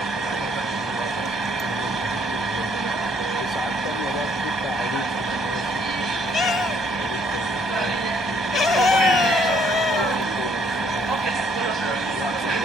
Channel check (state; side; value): normal; both; correlation 0.65